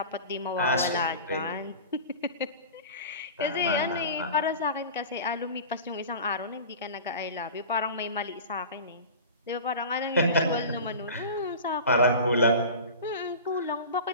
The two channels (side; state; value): both; inverted; correlation -0.34